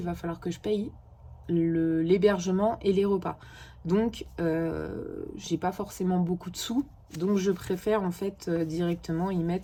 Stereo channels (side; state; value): both; identical; correlation 1.00